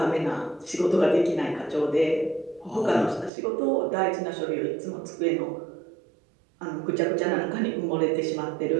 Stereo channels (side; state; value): left; drops out; at 3.3 s